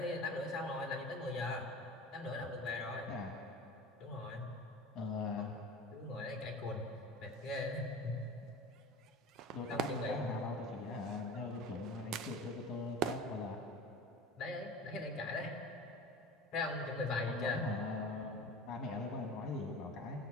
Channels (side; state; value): both; normal; correlation 0.36